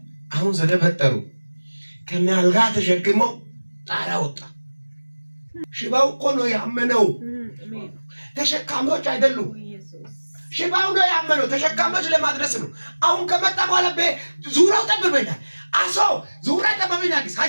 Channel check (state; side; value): inverted; both; correlation -1.00